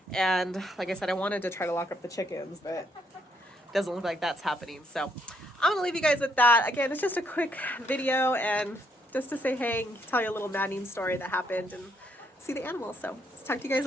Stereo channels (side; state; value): both; normal; correlation 0.73